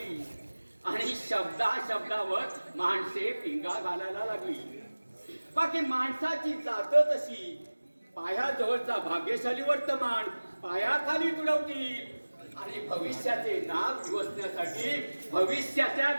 आणि शब्दावर माणसे पिंगा घालायला लागली. बाकी माणसाची जात तशी. पायाजवळचा भाग्यशाली वर्तमान पायाखाली तुडवतील आणि भविष्याचे नाव दिवसण्यासाठी भविष्याच्या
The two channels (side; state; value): both; inverted; correlation -1.00